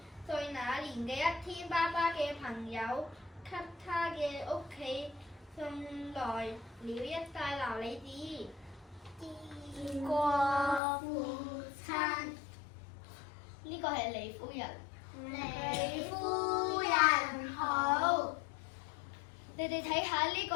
歲那年嘅一天，爸爸嘅朋友給他嘅屋企送來了一塊琉璃紙。見過父親，呢個係李夫人。李夫人好。你哋睇下呢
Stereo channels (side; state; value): right; drops out; at 10.8 s